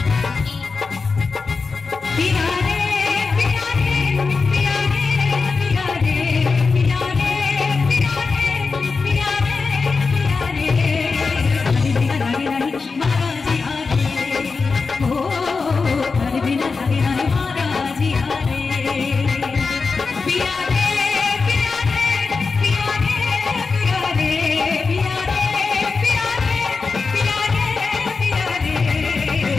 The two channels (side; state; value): right; quieter; 4.5 dB